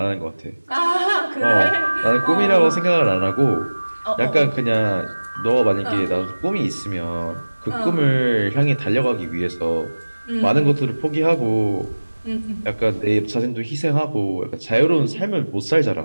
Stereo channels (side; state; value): both; inverted; correlation -1.00